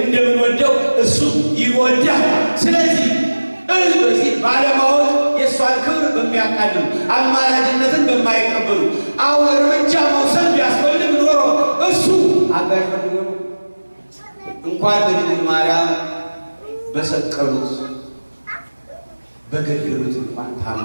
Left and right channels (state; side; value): inverted; both; correlation -1.00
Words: እንደምንወደው እሱ ይወዳል። ስለዚህ በዚህ ባለማወቅ የእሷን ክብር በሚያቃልሉ አማላጅነትን በማይቀበሉ አሁን እርምጃ መውሰድ ቢያስፈልግ ኖሮ እሱ አጋዥ ፈልጎ እንኳን በድንግል ማርያም በሰቀሉት በገደሉት እንኳን